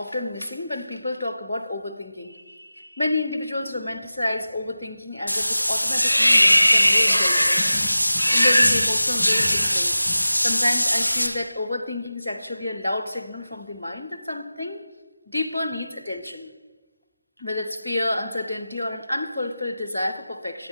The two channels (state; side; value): inverted; both; correlation -0.95